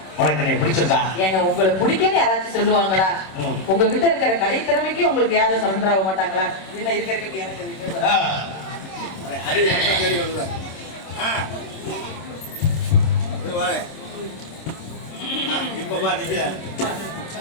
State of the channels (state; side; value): late; right; 27 ms